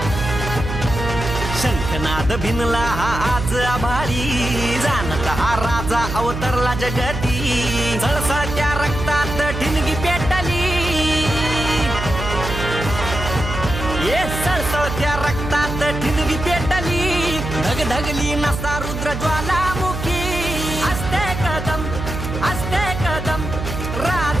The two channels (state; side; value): noise; right; hum, 6 dB below the sound